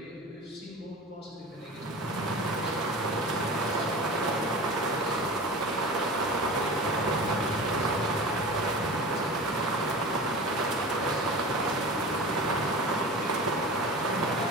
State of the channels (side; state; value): both; normal; correlation 0.33